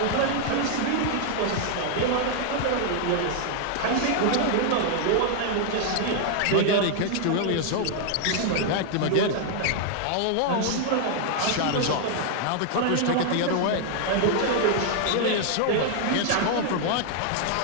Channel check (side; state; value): both; different; correlation 0.00